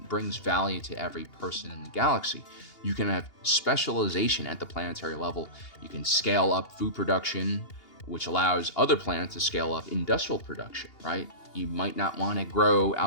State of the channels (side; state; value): right; late; 2.8 ms